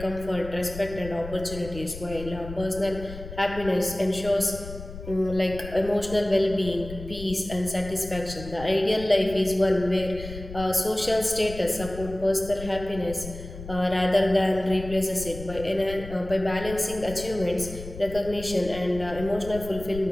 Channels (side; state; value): left; noise; rumble, 12 dB below the sound